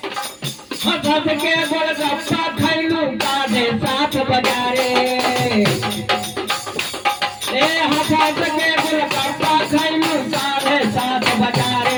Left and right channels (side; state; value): both; identical; correlation 1.00